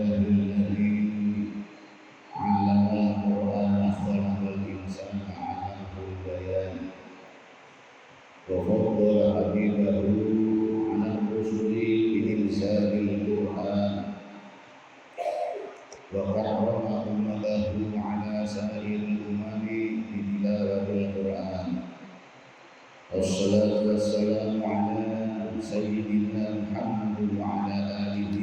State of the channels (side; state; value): both; identical; correlation 1.00